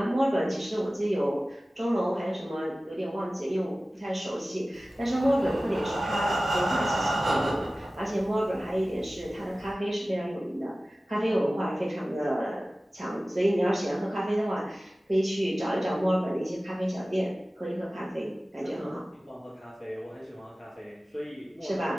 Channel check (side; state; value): both; normal; correlation 0.97